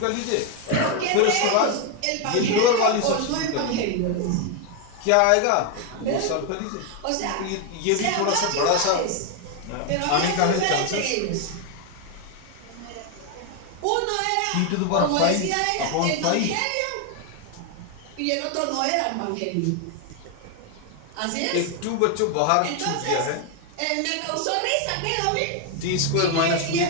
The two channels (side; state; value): both; different; correlation 0.01